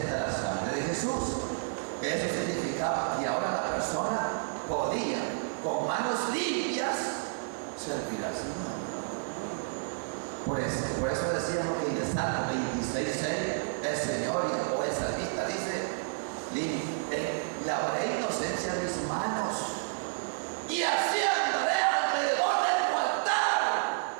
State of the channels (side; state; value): left; silent; digital silence